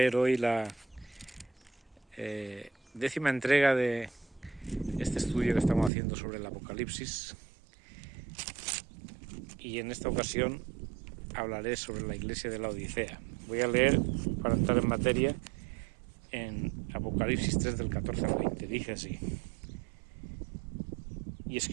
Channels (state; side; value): drops out; left; at 5.9 s